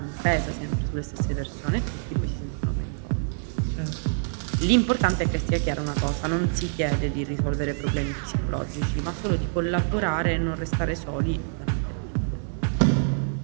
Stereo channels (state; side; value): silent; left; digital silence